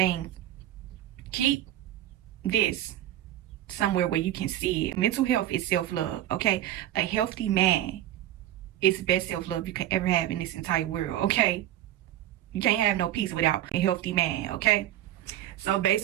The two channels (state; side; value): quieter; left; 13.0 dB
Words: Keep this somewhere where you can see it. Mental health is self-love, okay? A healthy man is the best self-love you can ever have in this entire world, okay? You can't have no peace without a healthy man, okay? So